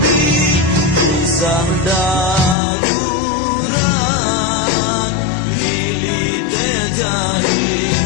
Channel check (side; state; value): right; drops out; at 2.6 s